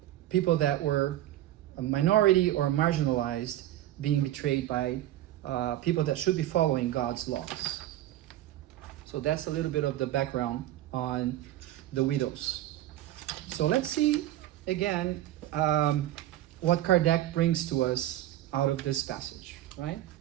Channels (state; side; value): quieter; left; 13.9 dB